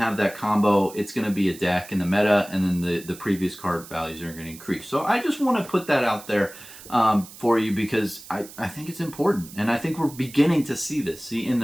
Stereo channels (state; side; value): noise; right; hiss, 17 dB below the sound